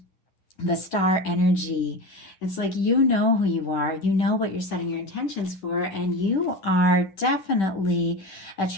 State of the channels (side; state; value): right; late; 10 ms